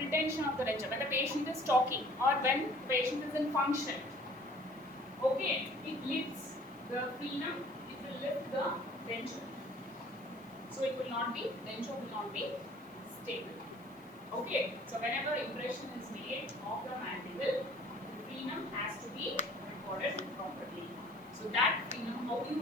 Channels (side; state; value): right; noise; hiss, 27 dB below the sound